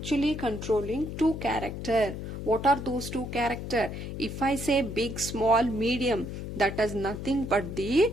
controlling two characters. What are those two characters? If I say big, small, medium, that is nothing but the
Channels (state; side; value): noise; left; hum, 7 dB below the sound